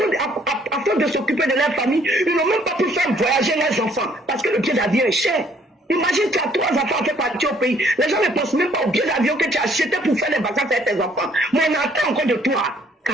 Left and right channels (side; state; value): both; normal; correlation 0.63